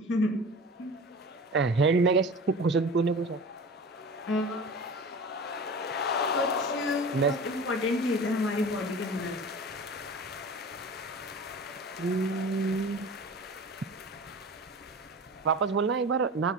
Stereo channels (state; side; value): normal; both; correlation 0.36